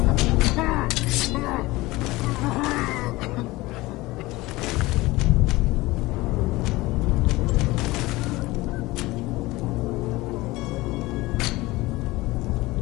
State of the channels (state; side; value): quieter; right; 20.2 dB